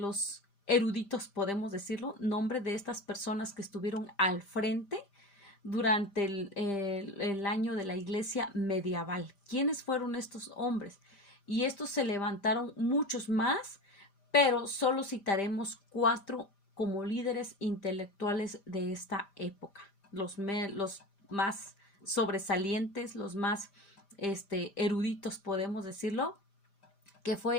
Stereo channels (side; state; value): right; late; 5.0 ms